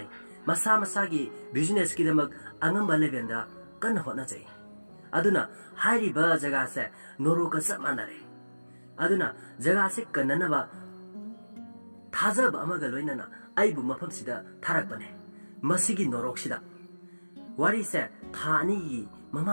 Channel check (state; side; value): inverted; both; correlation -1.00